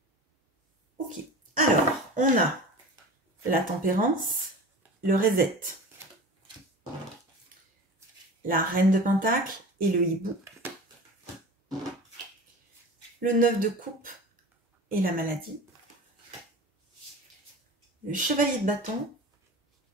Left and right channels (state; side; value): normal; both; correlation 0.35